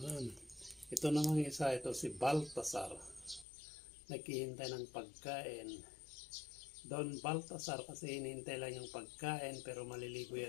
Ito namang isa, ito si Baltasar. Naghihintay ng pagkain. Don Baltasar kasi hinihintay lang yung pagkain pero maliligo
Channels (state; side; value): drops out; right; at 3.5 s